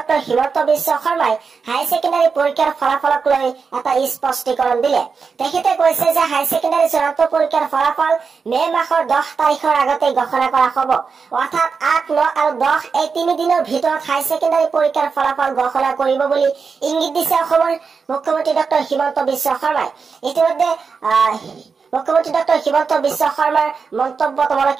হিমন্ত বিশ্ব শৰ্মাই হাই সেকেন্ডাৰী পৰীক্ষাৰ ফলাফলক লৈ এটা স্পষ্টীকৰণ দিলে। তেখেতে কৈছে যে হাই সেকেন্ডাৰী চূড়ান্ত পৰীক্ষাৰ ফলাফল মে মাহৰ 10 তাৰিখৰ আগতে ঘোষণা কৰা হ'ব। অৰ্থাৎ 8, 9 আৰু 10 এই 3 দিনৰ ভিতৰত হাই সেকেন্ডাৰী পৰীক্ষাৰ ফলাফল ঘোষণা কৰিব বুলি ইংগিত দিছে অসমৰ মুখ্যমন্ত্ৰী ডক্টৰ হিমন্ত বিশ্ব শৰ্মাই। ইতিমধ্যে মুখ্যমন্ত্ৰী ডক্টৰ হিমন্ত বিশ্ব শৰ্মাৰ মন্তব্য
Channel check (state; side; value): quieter; left; 5.3 dB